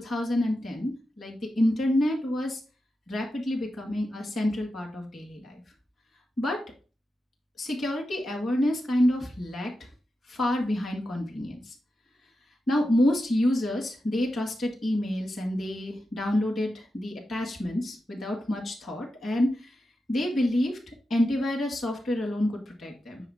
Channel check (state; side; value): normal; both; correlation 0.90